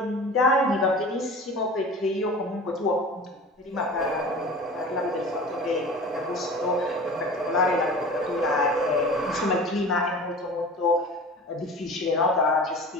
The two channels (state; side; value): normal; both; correlation 0.38